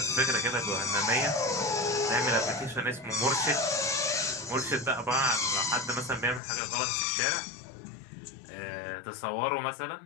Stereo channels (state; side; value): drops out; right; at 6.4 s